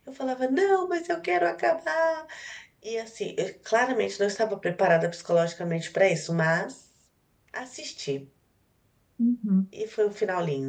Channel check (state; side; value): identical; both; correlation 1.00